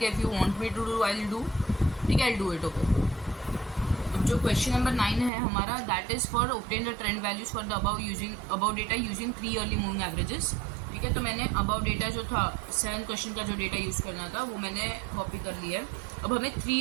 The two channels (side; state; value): left; drops out; at 5.3 s